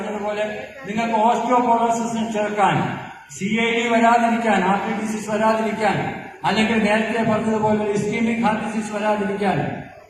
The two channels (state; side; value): identical; both; correlation 1.00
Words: നിങ്ങൾക്ക് ഓസ്റ്റിയോപോറോസിസിന് ചേർക്കാൻ, CID വരാതിരിക്കാൻ, ഹാർട്ട് ഡിസീസ് വരാതിരിക്കാൻ, അല്ലെങ്കിൽ നേരത്തെ പറഞ്ഞതുപോലെ ഇസ്കീമിക് ഹാർട്ട് ഡിസീസ് വരാതിരിക്കാൻ,